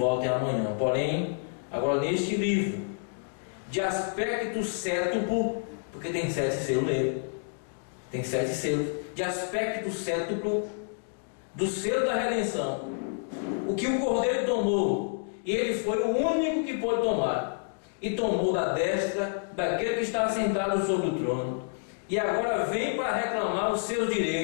amanhã. Porém, agora neste livro, de aspecto cétuplo, porque tem 7 selos nele, tem 7 selos, de aspecto cétuplo, do selo da redenção, o que o Cordeiro tomou, e ele foi o único que pôde tomar, e tomou da destra daquele que está sentado sobre o trono, e agora vem para reclamar os seus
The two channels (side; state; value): right; silent; digital silence